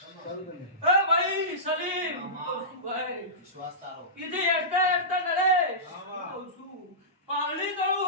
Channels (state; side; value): normal; both; correlation -0.19